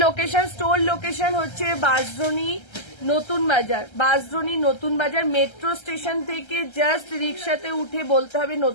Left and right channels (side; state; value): right; late; 1.3 ms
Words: লোকেশন হচ্ছে বাঁশদ্রোণী নতুন বাজার। বাঁশদ্রোণী নতুন বাজার মেট্রো স্টেশন থেকে জাস্ট রিক্সাতে উঠে বলতে হবে